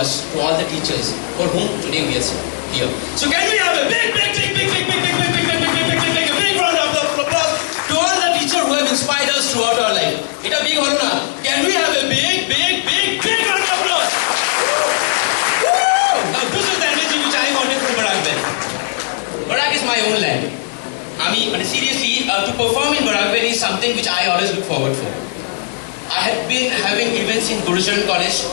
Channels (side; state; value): right; silent; digital silence